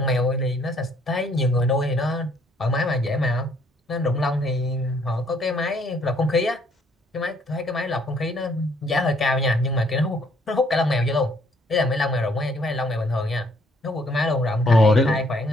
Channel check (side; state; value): both; normal; correlation 0.65